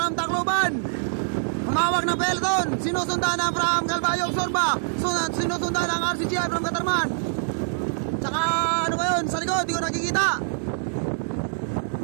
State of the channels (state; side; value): silent; left; digital silence